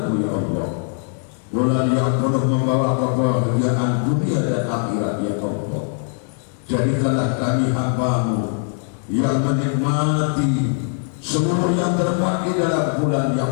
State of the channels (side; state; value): right; silent; 55 dB below the other